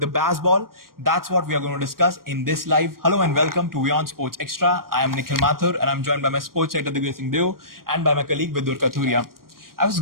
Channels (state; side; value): late; left; 0.92 ms